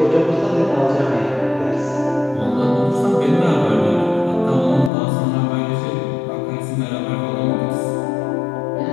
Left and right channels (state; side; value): drops out; right; at 4.9 s